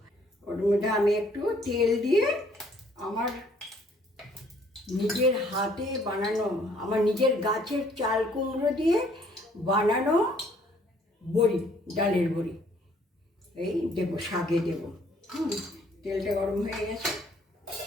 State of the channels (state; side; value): normal; both; correlation 0.62